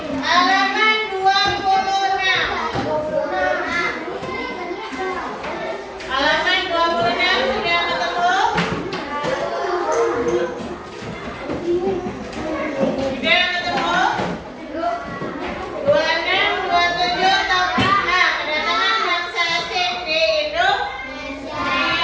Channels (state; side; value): identical; both; correlation 1.00